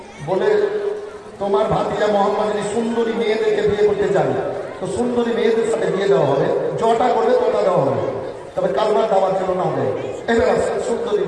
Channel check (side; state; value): both; identical; correlation 1.00